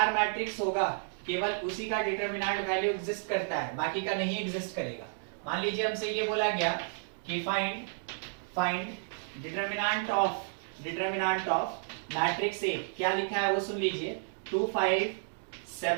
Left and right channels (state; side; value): silent; left; digital silence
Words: मैट्रिक्स होगा केवल उसी का डिटरमिनेंट वैल्यू एग्जिस्ट करता है, बाकी का नहीं एग्जिस्ट करेगा। मान लीजिए हमसे ये बोला गया कि फाइंड डिटरमिनेंट ऑफ मैट्रिक्स ए, क्या लिखा है वो सुन लीजिए, 2 5